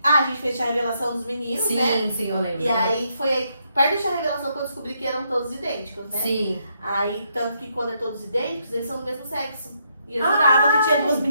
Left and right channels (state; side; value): inverted; both; correlation -0.76